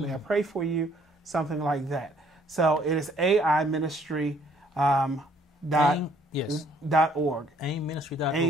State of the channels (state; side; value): normal; both; correlation 0.63